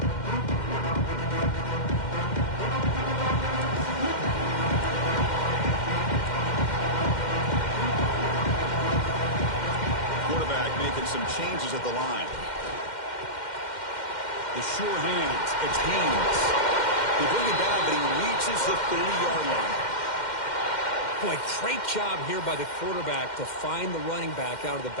Some changes at the line. The sure hands. It's Haynes. They bring it down, but he reaches the 30-yard line. Boy, great job here by the quarterback to find the running back out of the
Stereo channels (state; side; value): late; right; 2.1 ms